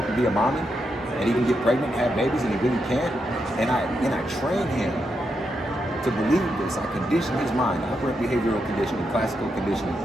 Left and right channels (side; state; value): both; normal; correlation 0.83